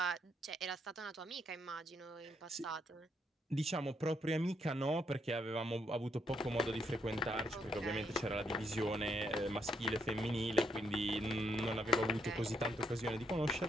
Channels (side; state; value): both; normal; correlation 0.75